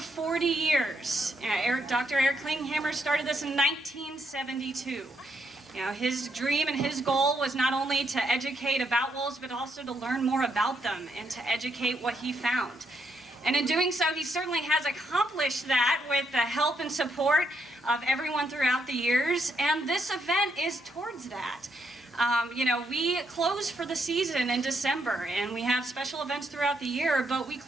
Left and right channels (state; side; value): normal; both; correlation 0.77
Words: years. Dr. Eric Klinghammer started this in 1972. His dream and his goal was not only to educate about wolves, but also to learn more about them and to educate what he found. And in doing so, he certainly has accomplished that with the help and support of everyone throughout the years. And this event is towards that. We close for the season in December, and we have special events throughout the year, but we